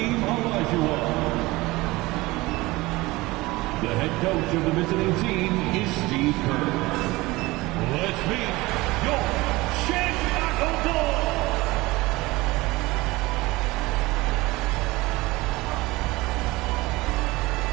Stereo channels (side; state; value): left; quieter; 20.8 dB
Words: Olajuwon. The head coach of the visiting team is Steve Kerr. Let's meet your Chicago Bulls.